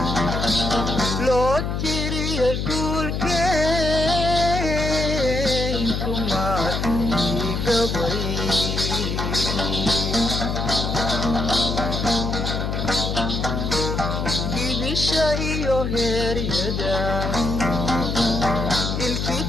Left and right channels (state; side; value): noise; left; hum, 1 dB below the sound